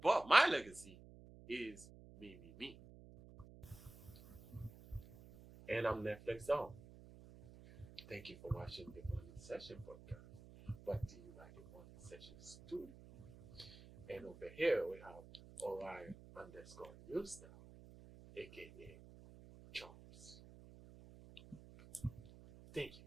But my legacy is me. And I'm NetflixDon. Thank you for watching the Morning Session podcast. Brought to you by the Morning Session Studio. And over here we have Orion underscore Newstar, aka Charles. Thank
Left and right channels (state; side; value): noise; right; hum, 18 dB below the sound